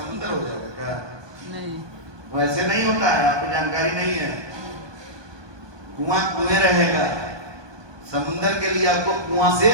हो जाएगा क्या? नहीं, वैसे नहीं होता है, आपको जानकारी नहीं है। कुआं कुएं रहेगा। समुद्र के लिए आपको कुआं से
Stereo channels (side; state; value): left; late; 1.2 ms